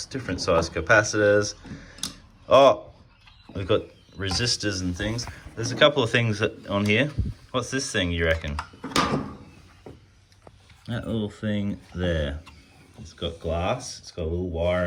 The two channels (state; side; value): identical; both; correlation 1.00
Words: different size capacitors. Oh, we've got resistors and things. There's a couple of things on here. What's this thing, you reckon? That little thing there. It's got glass. It's got a little wire